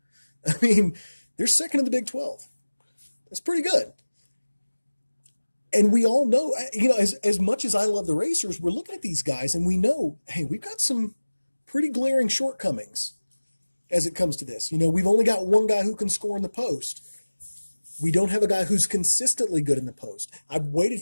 I mean, they're second in the Big 12. That's pretty good. And we all know, as much as I love the Racers, we're looking at these guys and we know, hey, we've got some pretty glaring shortcomings as it comes to this. We've only got one guy who can score in the post. We don't have a guy who's consistently good in the post. I've waited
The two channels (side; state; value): both; inverted; correlation -1.00